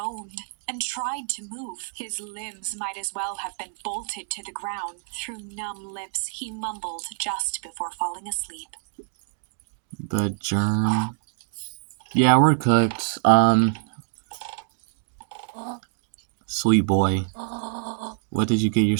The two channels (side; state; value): left; silent; 61 dB below the other